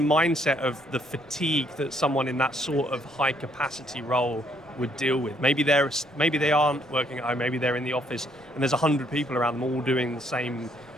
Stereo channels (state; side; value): normal; both; correlation 0.69